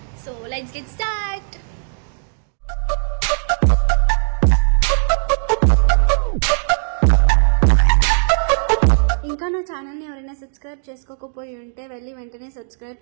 So let's get start. ఇంకా నా ఛానల్ని ఎవరైనా సబ్స్క్రైబ్ చేసుకోకపోయి ఉంటే వెళ్ళి వెంటనే సబ్స్క్రైబ్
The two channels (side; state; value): left; silent; digital silence